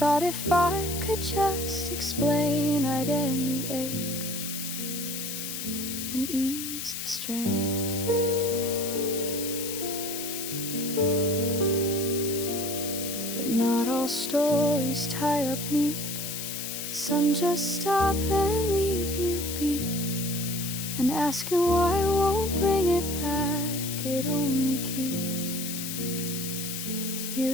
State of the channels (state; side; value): noise; left; hiss, 5 dB below the sound